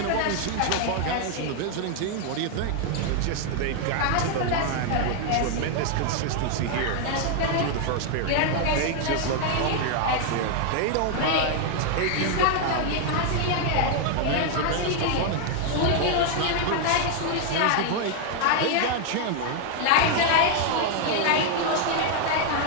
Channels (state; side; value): different; both; correlation 0.00